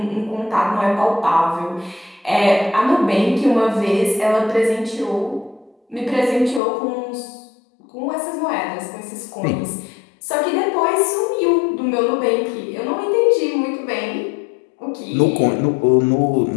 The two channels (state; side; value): drops out; right; at 6.6 s